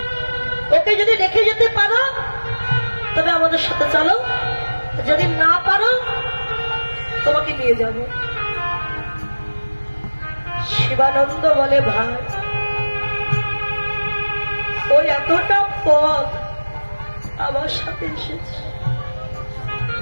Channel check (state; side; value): inverted; both; correlation -1.00